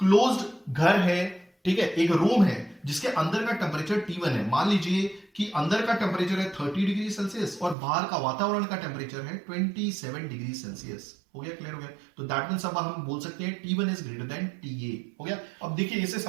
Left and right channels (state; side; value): drops out; left; at 7.8 s